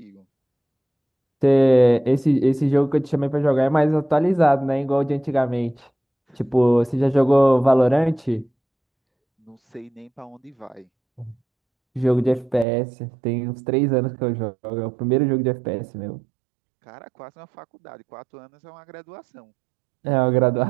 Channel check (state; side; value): drops out; left; at 12.7 s